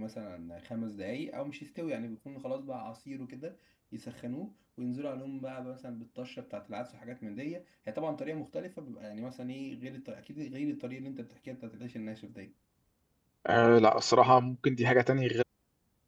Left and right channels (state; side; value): identical; both; correlation 1.00